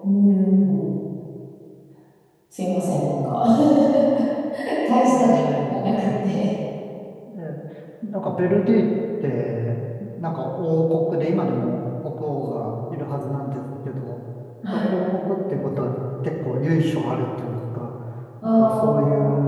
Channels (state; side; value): identical; both; correlation 1.00